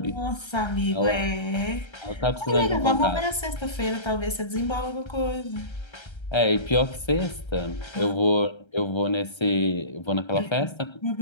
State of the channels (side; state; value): right; late; 1.3 ms